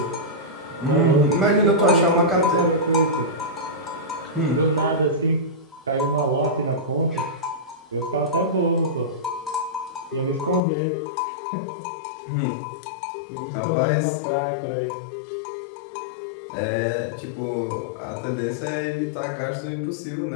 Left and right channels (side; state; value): right; drops out; at 10.6 s